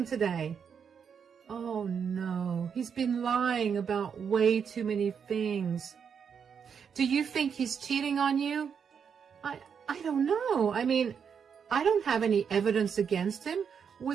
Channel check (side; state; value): left; quieter; 7.0 dB